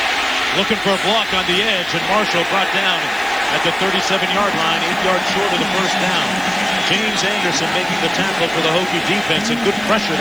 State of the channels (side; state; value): right; noise; hiss, 22 dB below the sound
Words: Looking for a block on the edge, and Marshall brought down at the 37-yard line, 8 yards short of the first down. James Anderson making the tackle for the Hokie defense, and good pressure